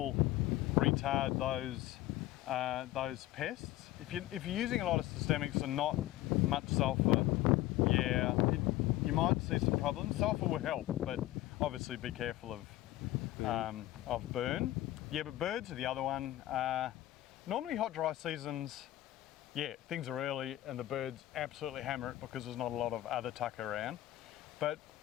retard those pests. If you're using a lot of systemics and not much sulphur, you might see some problems. Sulphur will help, but obviously be careful of burn. Yeah, but birds are the other one. Normally hot, dry seasons, things are early and the birds absolutely hammer it because there's not a lot of other tuck around. But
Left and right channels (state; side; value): quieter; right; 15.5 dB